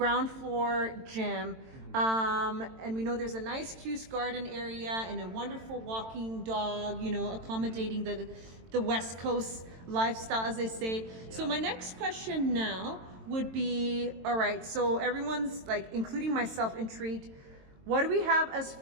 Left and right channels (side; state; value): left; late; 22 ms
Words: floor gym. And we know there's a nice Cuse garden area and a wonderful walking dog, you know, accommodating the West Coast lifestyle, as they say. Yeah. So my next question now would be, all right, so everyone's like, including myself, intrigued. What do we have as